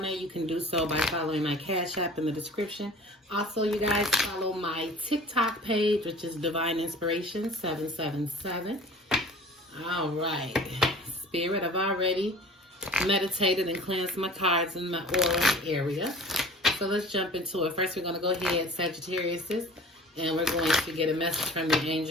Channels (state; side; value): normal; both; correlation 0.44